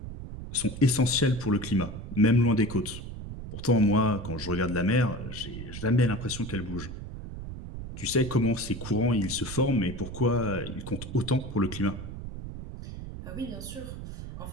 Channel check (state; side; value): noise; right; rumble, 9 dB below the sound